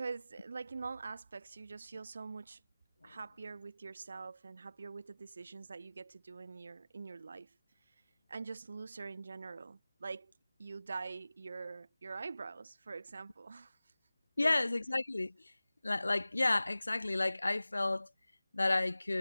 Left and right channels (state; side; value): inverted; both; correlation -0.97